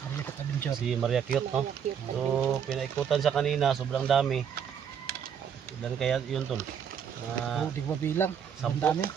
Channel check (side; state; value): left; quieter; 7.9 dB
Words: Si Maria Cute, no? So pinaikutan siya kanina, sobrang dami. Ilan kaya yun tol? Di ba bilang? Sobrang dami.